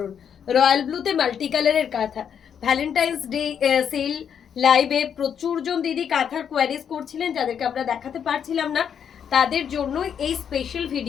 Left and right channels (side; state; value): right; quieter; 8.0 dB